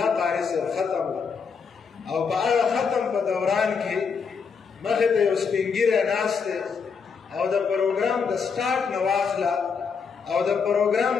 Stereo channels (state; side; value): quieter; right; 5.8 dB